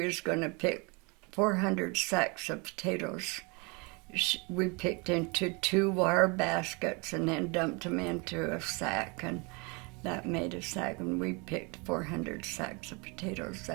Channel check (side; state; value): left; quieter; 30.1 dB